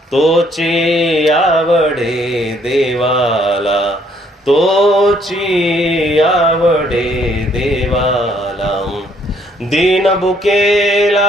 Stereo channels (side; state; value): both; normal; correlation 0.66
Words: तोची आवडे देवाला, तोची आवडे देवाला.